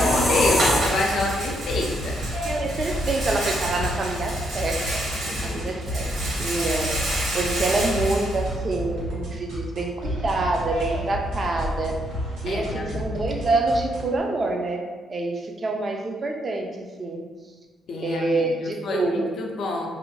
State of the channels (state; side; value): normal; both; correlation 0.75